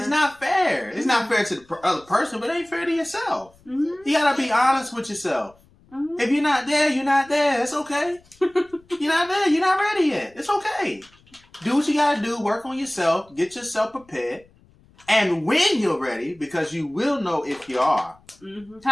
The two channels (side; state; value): left; noise; rumble, 30 dB below the sound